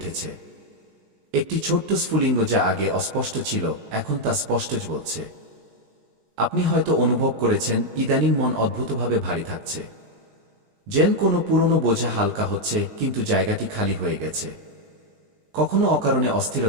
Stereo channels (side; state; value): left; late; 19 ms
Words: একটি ছোট্ট স্ফুলিঙ্গ যা আগে অস্পষ্ট ছিল, এখন তা স্পষ্ট বলছে। আপনি হয়তো অনুভব করেছেন, ইদানিং মন অদ্ভুতভাবে ভারী থাকছে। যেন কোনো পুরনো বোঝা হালকা হচ্ছে, কিন্তু জায়গাটি খালি হয়ে গেছে। কখনো অকারণে